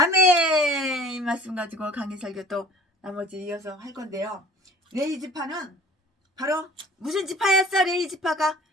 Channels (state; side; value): normal; both; correlation 0.48